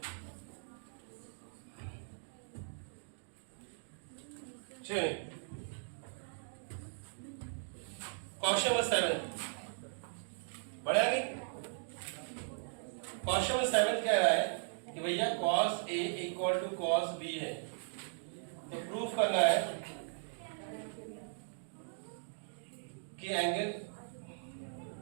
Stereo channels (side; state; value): left; silent; digital silence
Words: चलिए क्वेश्चन नंबर 7 बढ़िया कि क्वेश्चन नंबर 7 कह रहा है कि भैया cos A = cos B है, तो प्रूफ करना है कि एंगल